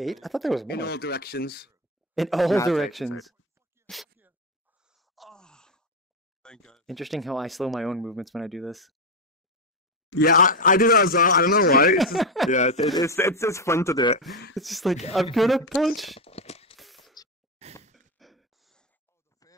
I thought there was more. In all directions. In all Nah, it's 8, directions. Interesting how I slow my own movements when I do this. Yeah, I do that as well. I don't know why. It's just, yeah, it's fun to do it. It's just like, I'm gonna punch.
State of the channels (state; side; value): normal; both; correlation 0.08